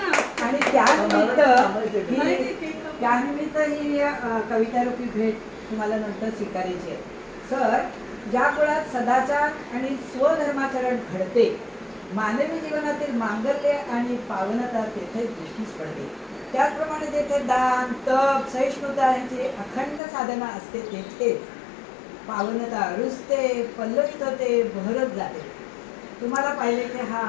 आणि त्यानिमित्त ही कवितारूपी भेट तुम्हाला नंतर स्वीकारायची आहे। सर, ज्या कुळात सदाचार आणि स्वधर्माचरण घडते, मानवी जीवनातील मांगल्य आणि पावनता तेथे दृष्टीस पडते। त्याचप्रमाणे जेथे दान, तप, सहिष्णुता यांची अखंड साधना असते, तेथे पावनता रुजते, पल्लवित होते, बहरत जाते। तुम्हाला पाहिले की हा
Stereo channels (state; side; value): drops out; right; at 20.0 s